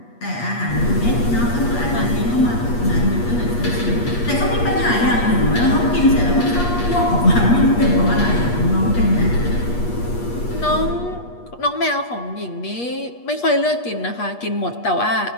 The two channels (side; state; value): right; late; 8.4 ms